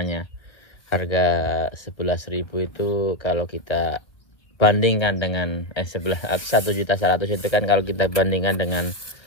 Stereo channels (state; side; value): late; right; 1.4 ms